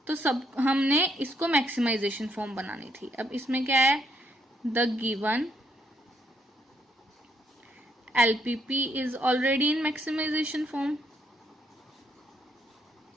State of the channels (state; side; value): normal; both; correlation 0.73